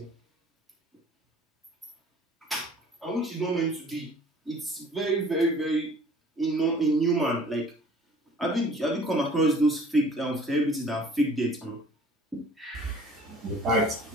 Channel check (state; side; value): normal; both; correlation 0.51